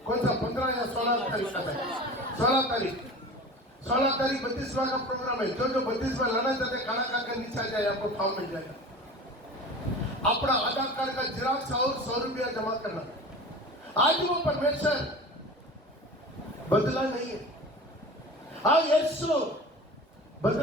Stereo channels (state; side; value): normal; both; correlation 0.36